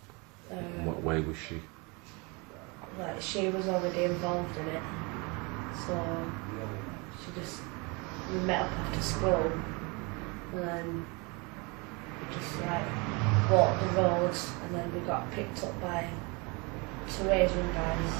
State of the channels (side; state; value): left; quieter; 28.9 dB